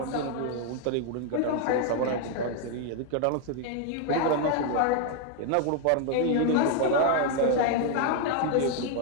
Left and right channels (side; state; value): both; different; correlation 0.00